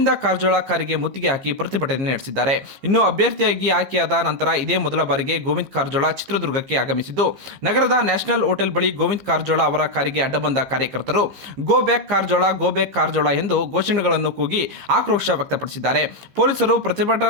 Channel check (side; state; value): left; late; 15 ms